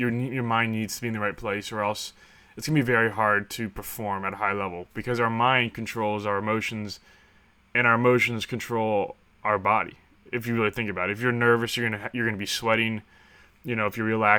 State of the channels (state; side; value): identical; both; correlation 1.00